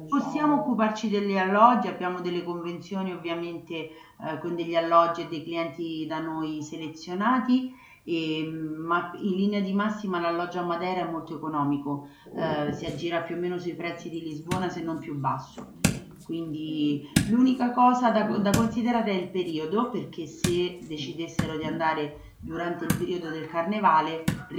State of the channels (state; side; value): identical; both; correlation 1.00